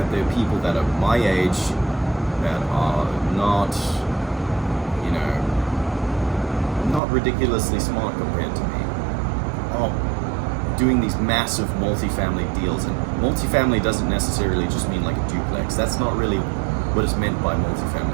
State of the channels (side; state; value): left; drops out; at 7.0 s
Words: there are people that are my age that are not ridiculously smart compared to me, are doing these massive multifamily deals. And multifamily doesn't necessarily just mean like a duplex. That's not really what is meant by